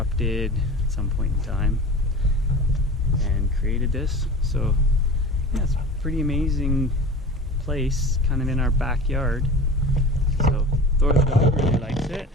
at some point in time and created this. So yeah, it's a pretty amazing place, kind of in our backyard. So Thor the dog really likes it.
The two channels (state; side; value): normal; both; correlation 0.36